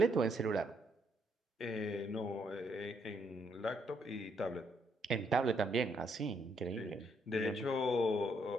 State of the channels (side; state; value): both; normal; correlation 0.73